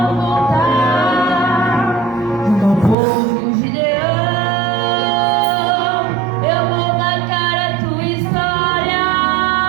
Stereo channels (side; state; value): left; drops out; at 3.0 s